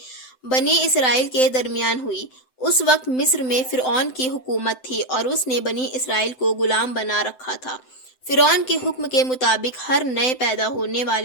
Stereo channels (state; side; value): late; right; 7.8 ms